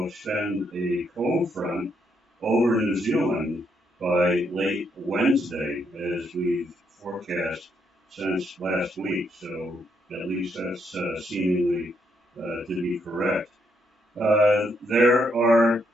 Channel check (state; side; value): normal; both; correlation 0.76